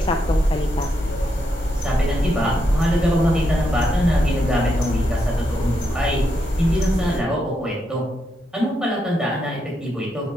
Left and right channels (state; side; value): normal; both; correlation 0.81